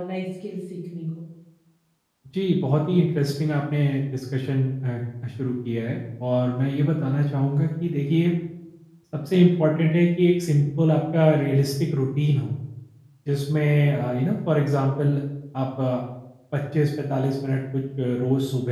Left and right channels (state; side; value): identical; both; correlation 1.00